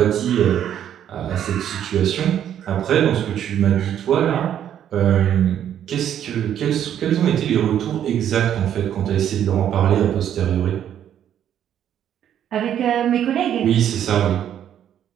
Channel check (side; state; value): left; quieter; 10.1 dB